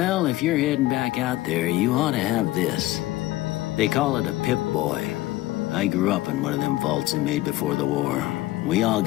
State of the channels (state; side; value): quieter; right; 17.4 dB